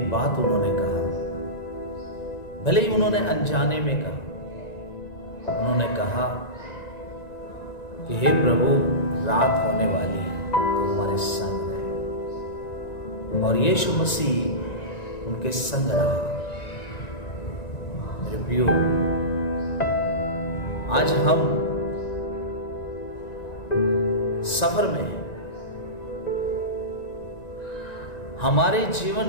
बात उन्होंने कहा, भले ही उन्होंने अनजाने में कहा। उन्होंने कहा कि हे प्रभु, रात होने वाली है, तो हमारे संग रहे। और यीशु मसीह उनके संग रहा। मेरे प्रियो, आज हम सफर में हैं। हमारे जीवन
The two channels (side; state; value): right; late; 1.9 ms